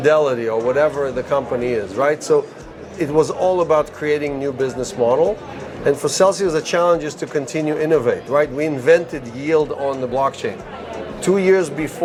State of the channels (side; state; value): both; identical; correlation 1.00